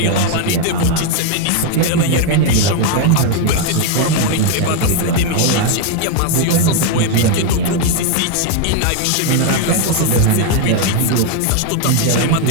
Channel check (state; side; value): different; both; correlation 0.01